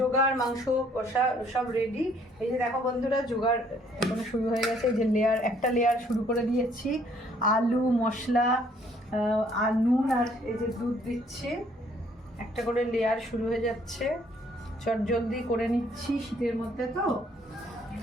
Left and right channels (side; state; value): both; normal; correlation 0.63